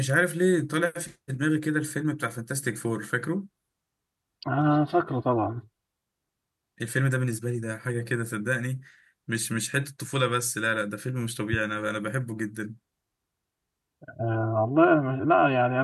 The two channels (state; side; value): identical; both; correlation 1.00